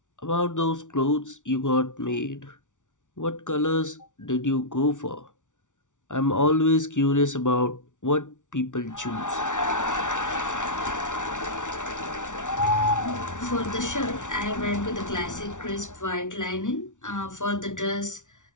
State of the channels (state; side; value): late; right; 0.86 ms